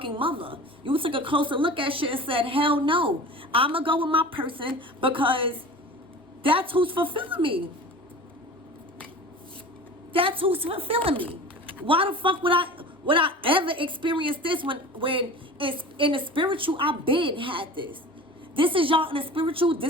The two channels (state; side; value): normal; both; correlation 0.37